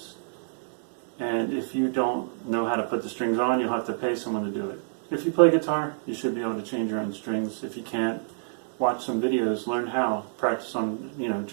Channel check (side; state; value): left; silent; digital silence